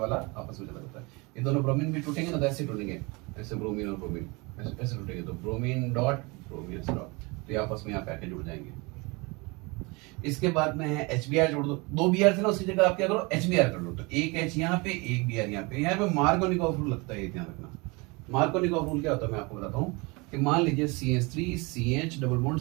आपस में चला जाता है। ये दोनों ब्रोमीन भी टूटेंगे ना, तो ऐसे टूटेंगे, ऐसे ब्रोमीन और ब्रोमीन ऐसे टूटेंगे, तो ब्रोमीन डॉट ब्रोमीन डॉट, तो ये आपस में यहाँ पे आके जुड़ जाएंगे। इसके बाद में है HBr जोड़ दो, 2 Br थे ना, उसकी जगह आप क्या करो HBr कर लो। तो एक H यहाँ पे, एक Br यहाँ पे। यहाँ पे मार्कोनिकॉफ रूल लगता है, ये ध्यान रखना। मार्कोनिकॉफ रूल क्या होता है मैं आपको बताता हूँ कि मान लीजिए CH3 CH double bond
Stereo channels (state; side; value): quieter; left; 26.9 dB